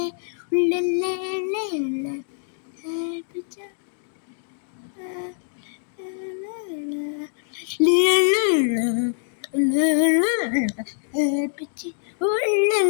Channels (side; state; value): right; silent; 62 dB below the other